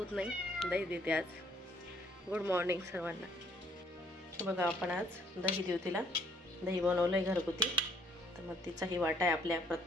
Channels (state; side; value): normal; both; correlation 0.65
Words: नाही दही देते आज। गुड मॉर्निंग सर्वांना। बघा आपण आज दही देऊ तिला। दही बनवलंय घरगुती, तर मग तिचाही वाटा आहे आपल्या